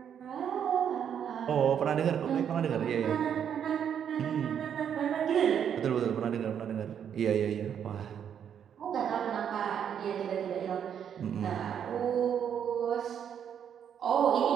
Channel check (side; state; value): left; quieter; 8.6 dB